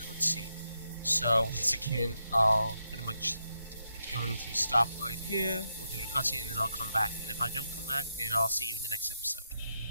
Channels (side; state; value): both; inverted; correlation -0.84